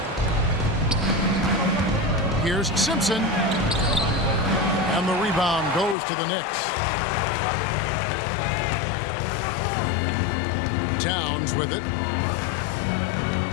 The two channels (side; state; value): right; drops out; at 6.0 s